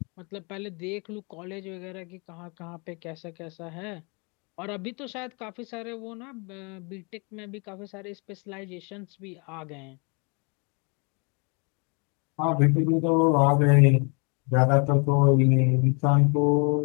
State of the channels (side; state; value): right; quieter; 36.4 dB